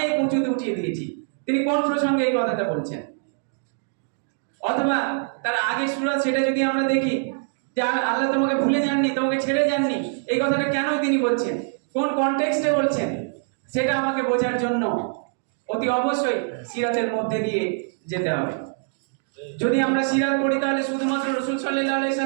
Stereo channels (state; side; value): silent; left; digital silence